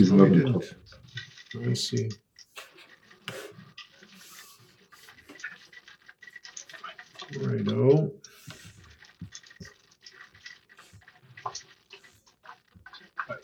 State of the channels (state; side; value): identical; both; correlation 1.00